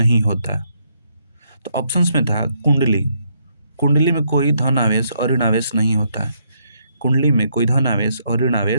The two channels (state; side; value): inverted; both; correlation -0.74